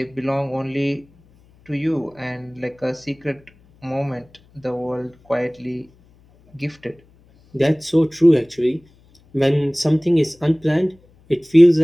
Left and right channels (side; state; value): left; noise; hum, 30 dB below the sound